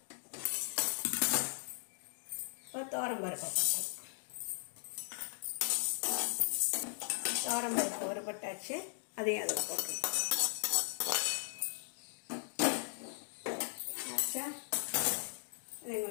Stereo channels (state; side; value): silent; right; digital silence